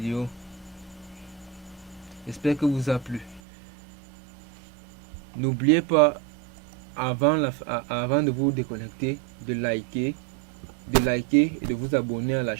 J'espère que vous a plu. N'oubliez pas, avant de vous déconnecter, de liker et de vous abonner à la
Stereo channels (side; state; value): left; drops out; at 3.4 s